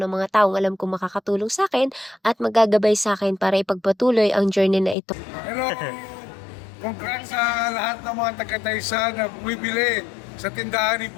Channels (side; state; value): right; drops out; at 5.0 s